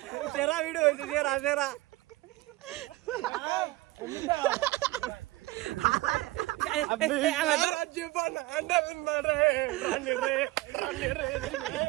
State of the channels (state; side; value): quieter; left; 19.1 dB